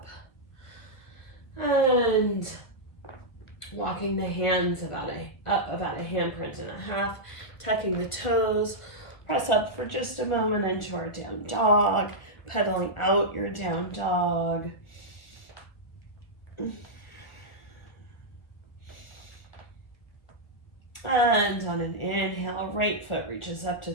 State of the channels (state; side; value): late; right; 1.5 ms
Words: And walking the hands up about a handprint and a half. Tucking the toes. Press up for just a moment into our down dog. Pedaling out your down dog. And on an inhale, right foot reaches up to